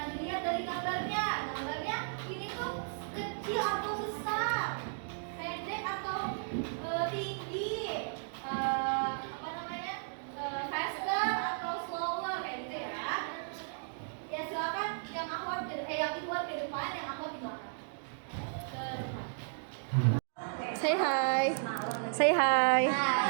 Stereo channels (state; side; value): silent; left; digital silence